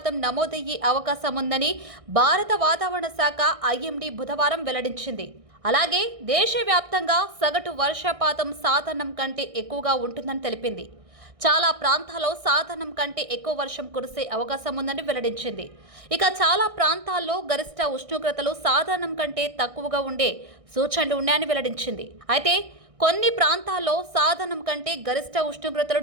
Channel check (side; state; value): left; late; 1.6 ms